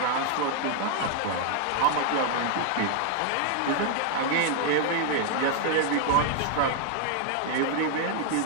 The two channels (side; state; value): both; different; correlation 0.00